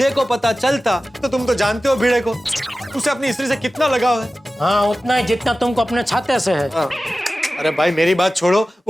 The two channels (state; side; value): normal; both; correlation 0.95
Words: को पता चलता तो तुम तो जानते हो भिड़े को, उसे अपनी स्त्री से कितना लगाव है। हाँ, उतना ही जितना तुमको अपने छाते से है। अरे भाई मेरी बात छोड़ो,